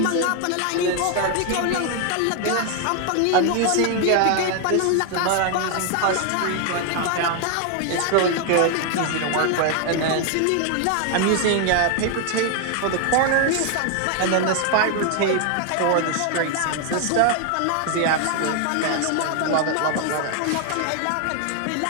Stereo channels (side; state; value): both; different; correlation 0.00